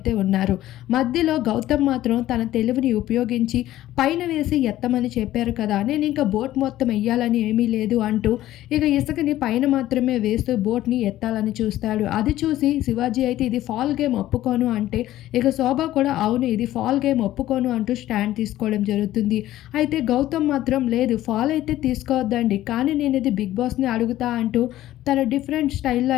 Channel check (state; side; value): quieter; right; 14.3 dB